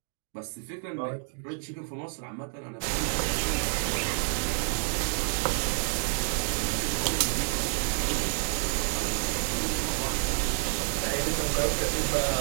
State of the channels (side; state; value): left; silent; 59 dB below the other